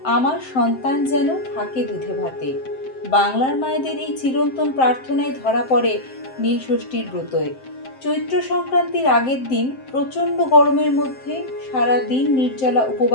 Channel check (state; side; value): late; right; 7.7 ms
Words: আমার সন্তান যেন থাকে দুধে ভাতে, বাংলার মায়েদের এই চিরন্তন প্রার্থনায় ধরা পড়ে নীলষষ্ঠীর ব্রতয়ে। চৈত্র সংক্রান্তির আগের দিন প্রচণ্ড গরমের মধ্যে সারা দিন নির্জলা